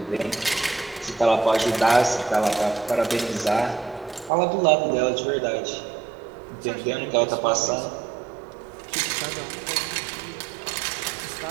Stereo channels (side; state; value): left; drops out; at 4.3 s